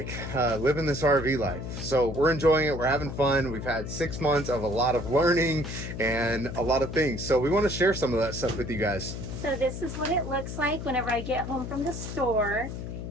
living this RV life. So we're enjoying it, we're having fun. We've had 6 months of a lot of learning and a lot of things. So we want to share some of that stuff with you guys. So this is what it looks like whenever I get home from the store.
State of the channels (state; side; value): noise; left; hum, 7 dB below the sound